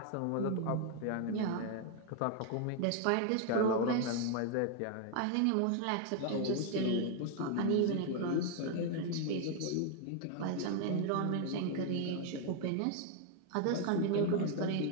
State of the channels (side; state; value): both; different; correlation 0.00